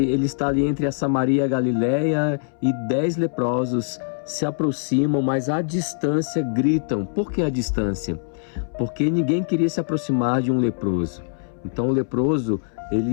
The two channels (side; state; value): right; silent; 63 dB below the other